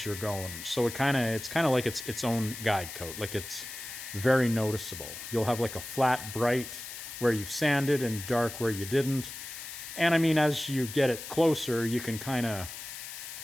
you're going. So it's kind of like it's its own guide coat. Like, it's very noticeable. You'll have like a flat, bright where you've sanded and dark where you didn't. And I mean, as you get it closer, you can kind of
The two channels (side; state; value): left; noise; hiss, 10 dB below the sound